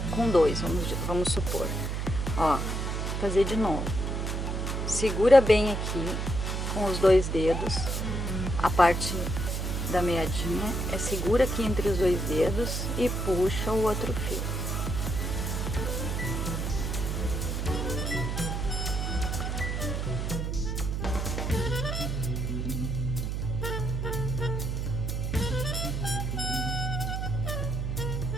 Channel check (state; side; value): noise; right; hum, 1 dB below the sound